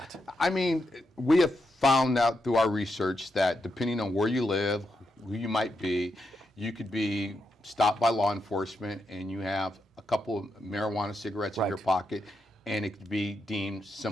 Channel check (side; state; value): both; normal; correlation 0.84